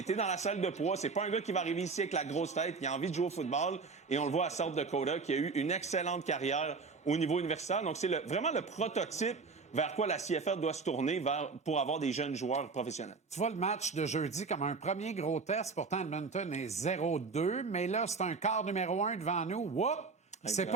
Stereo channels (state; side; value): quieter; left; 4.6 dB